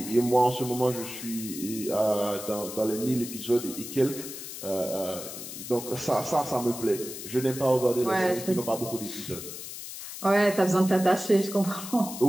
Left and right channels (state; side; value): noise; left; hiss, 10 dB below the sound